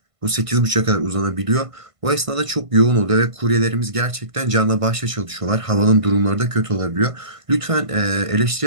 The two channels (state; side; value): late; left; 1.5 ms